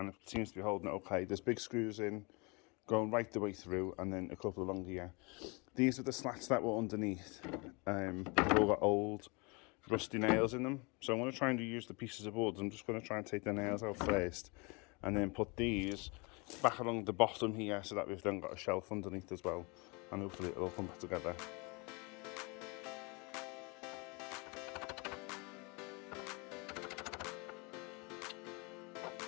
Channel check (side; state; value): right; quieter; 29.2 dB